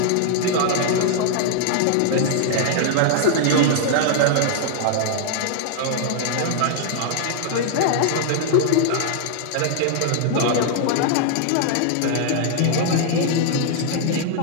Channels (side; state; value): both; different; correlation -0.01